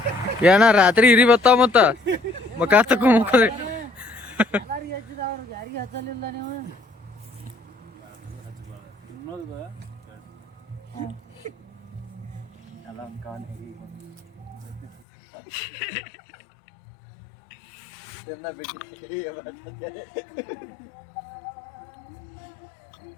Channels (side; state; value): right; drops out; at 15.0 s